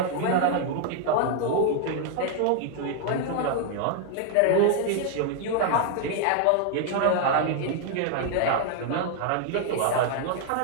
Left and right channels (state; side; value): different; both; correlation 0.00